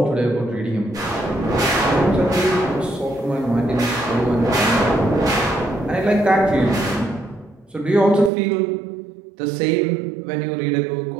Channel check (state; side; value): drops out; left; at 8.3 s